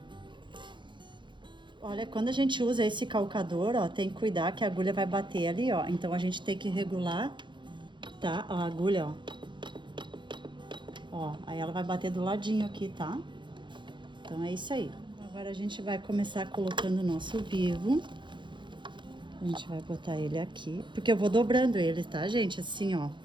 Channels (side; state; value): left; late; 0.23 ms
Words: Olha, quando a gente usa esse calcador, ó, tem que cuidar que a agulha vai bater ali, ó. Então a gente tem que regular, tá? A agulha, ó. Ó, aí ela vai bater do ladinho aqui, tá? Então é isso aí. Agora a gente vai começar colocando o nosso vivo. A gente vai botar ele aqui, porque eu vou dobrando ele, tá, gente? Assim, ó.